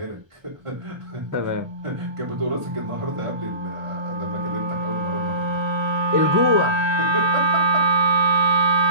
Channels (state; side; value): late; left; 1.3 ms